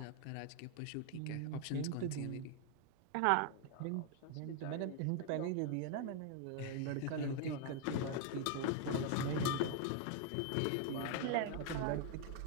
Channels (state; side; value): different; both; correlation 0.00